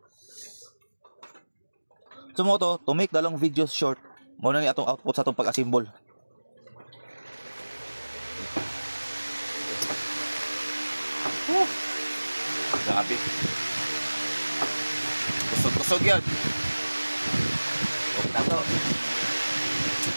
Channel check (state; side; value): inverted; both; correlation -1.00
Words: Sumoto to make the long videos short. Mao na ni atong output sa atong pag-assemble. Grabe. Kusog-kusog yan. Huwag na to.